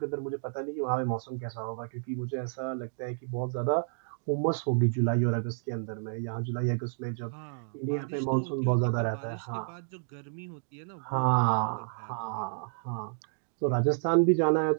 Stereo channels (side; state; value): left; silent; digital silence